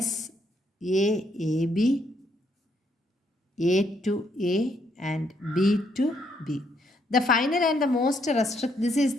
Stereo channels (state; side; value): normal; both; correlation 0.73